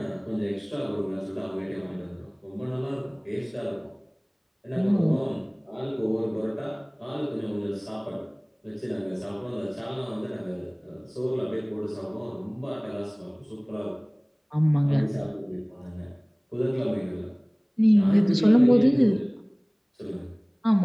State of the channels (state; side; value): identical; both; correlation 1.00